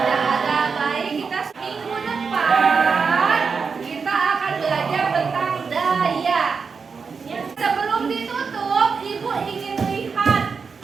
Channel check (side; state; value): left; quieter; 5.3 dB